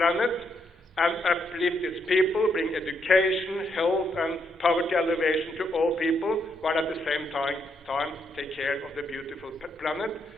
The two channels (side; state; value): both; normal; correlation 0.77